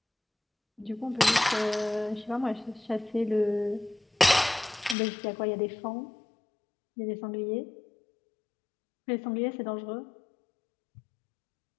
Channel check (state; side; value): drops out; right; at 5.0 s